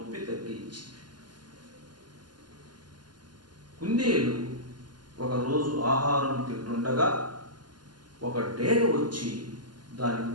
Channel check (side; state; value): left; late; 0.71 ms